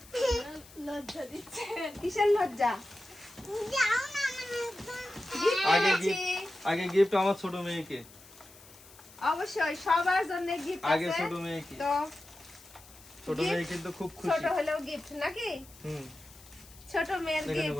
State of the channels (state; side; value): noise; left; hiss, 22 dB below the sound